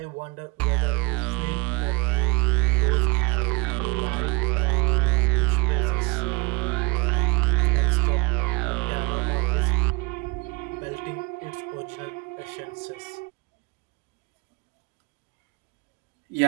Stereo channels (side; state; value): left; quieter; 27.5 dB